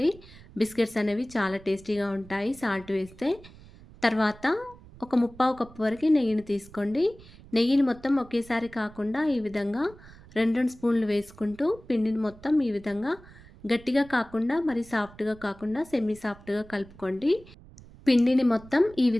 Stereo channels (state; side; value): noise; right; rumble, 21 dB below the sound